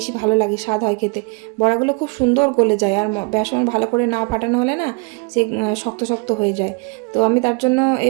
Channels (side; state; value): left; quieter; 33.2 dB